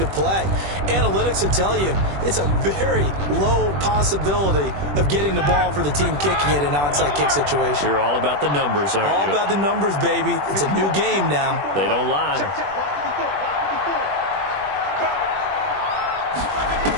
play. Analytics will tell you it's a very low possibility of getting the ball for the team kicking it in an onside kick situation. You're all about the numbers, aren't you? All about the numbers, baby. It's a new game now. They don't lie.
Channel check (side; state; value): left; late; 21 ms